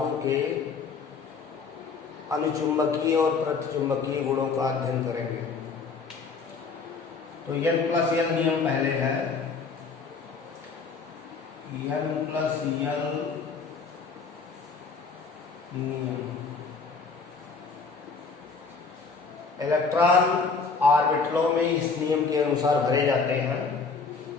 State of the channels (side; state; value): right; quieter; 4.8 dB